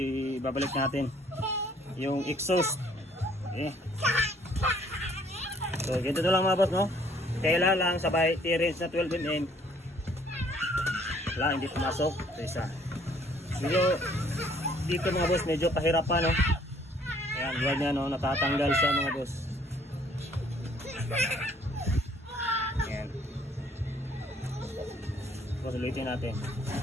natin yung exhaust. Okay. So ganito na lang mga boss, no. Kailan lang sabay T-range na 12mm. Wala, hindi pumasok. So isa. Dito mga boss, medyo kahirapan, no. Ayan, buwan niya, no, natatanggal siya mga boss. Ayan. So ulitin natin.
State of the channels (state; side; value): normal; both; correlation 0.61